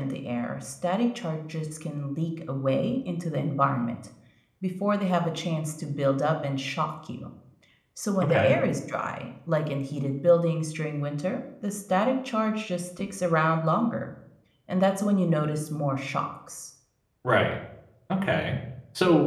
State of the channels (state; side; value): identical; both; correlation 1.00